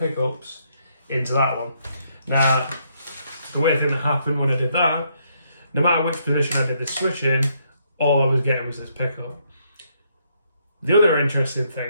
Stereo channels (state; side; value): inverted; both; correlation -0.73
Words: into that one. Now, the weird thing that happened when I did that, no matter which position I did the switch in, all I was getting was this pickup. The other interesting